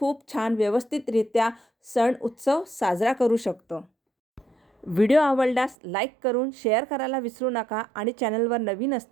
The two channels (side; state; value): left; drops out; at 5.8 s